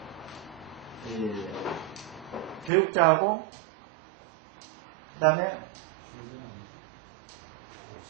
교육자하고 그 다음에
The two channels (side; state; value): left; drops out; at 2.7 s